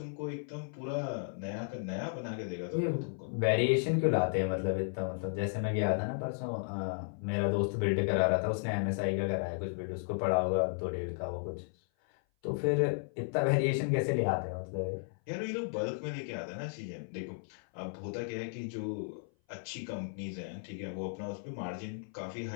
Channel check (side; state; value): right; silent; 55 dB below the other